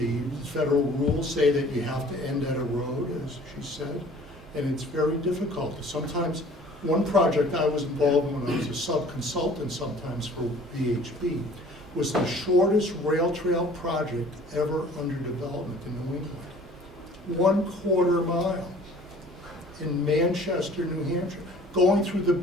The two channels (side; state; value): both; normal; correlation 0.51